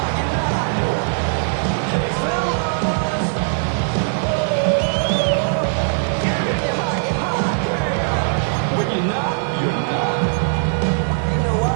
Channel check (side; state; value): left; silent; digital silence